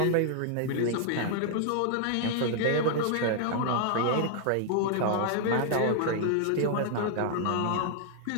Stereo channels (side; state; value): both; different; correlation 0.00